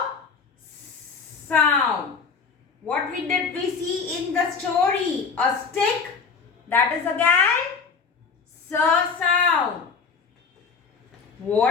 sound. What did we see in the story? A stick. That is again sound.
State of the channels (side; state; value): right; quieter; 5.3 dB